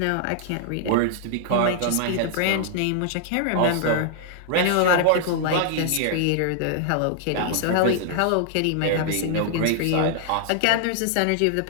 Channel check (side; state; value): both; different; correlation -0.01